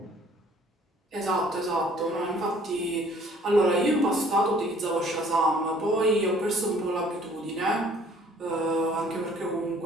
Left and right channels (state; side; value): normal; both; correlation 0.56